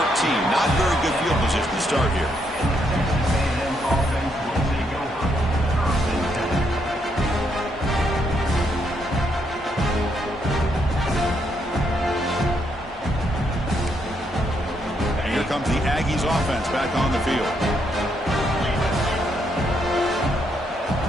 Not very good field position to start here. Comes the Aggies offense back on the field.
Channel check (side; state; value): both; normal; correlation 0.76